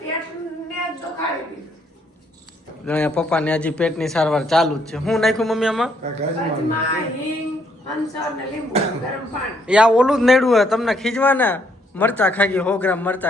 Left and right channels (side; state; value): both; normal; correlation 0.70